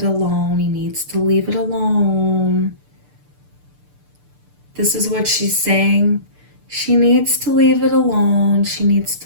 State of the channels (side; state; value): left; late; 6.8 ms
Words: alone. He needs to leave it alone. This is what she's saying. She needs to leave it alone. She needs